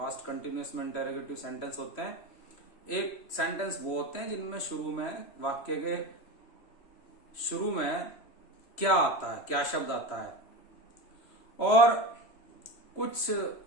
कंटिन्यूअस में इंटेरोगेटिव सेंटेंस होते हैं। एक सेंटेंस वो होते हैं जिनमें शुरू में वाक्य के शुरू में क्या आता है, क्या शब्द आता है, और कुछ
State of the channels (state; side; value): late; right; 3.0 ms